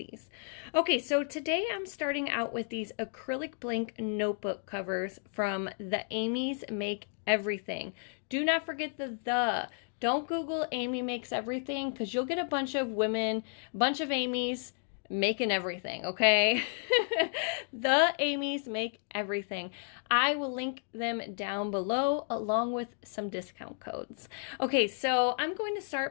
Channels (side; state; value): right; silent; 56 dB below the other